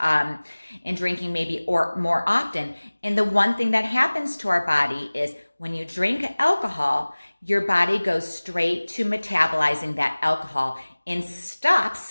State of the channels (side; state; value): both; inverted; correlation -1.00